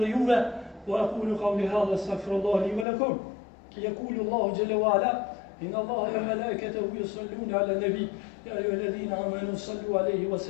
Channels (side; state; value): right; drops out; at 2.9 s